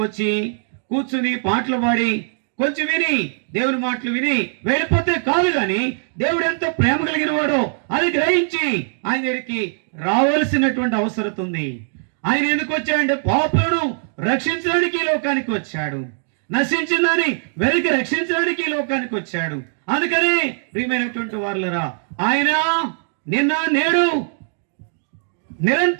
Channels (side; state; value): left; silent; digital silence